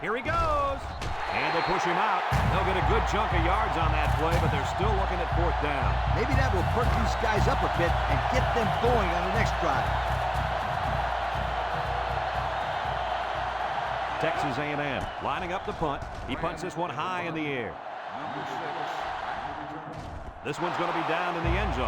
Here he goes. And they push him out. They'll get a good chunk of yards on that play, but they're still looking at 4th down. Maybe that will perk these guys up a bit and get them going on the next drive. Texas A&M lining up the punt. He punts this one high in the air. This one's going to be down in the end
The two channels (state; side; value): identical; both; correlation 1.00